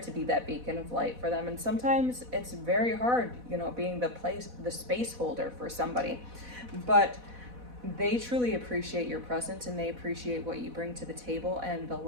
be that beacon of light for them. And sometimes it's very hard, being the space holder for somebody. But they truly appreciate your presence, and they appreciate what you bring to the table and the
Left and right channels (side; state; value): left; late; 4.1 ms